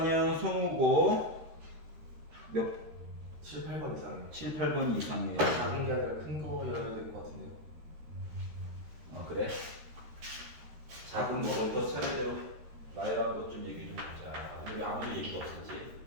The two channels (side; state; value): left; late; 13 ms